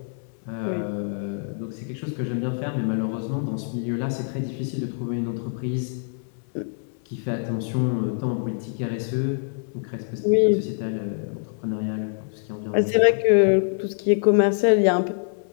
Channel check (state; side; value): silent; right; digital silence